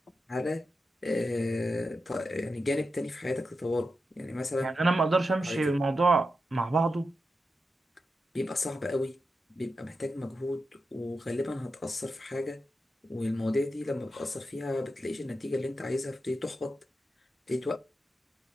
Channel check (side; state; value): both; normal; correlation 0.89